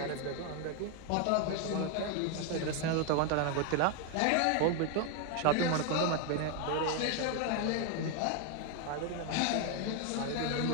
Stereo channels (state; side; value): different; both; correlation 0.01